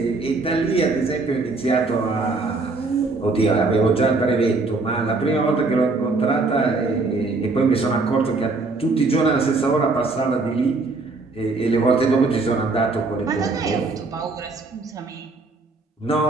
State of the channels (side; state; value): left; quieter; 3.6 dB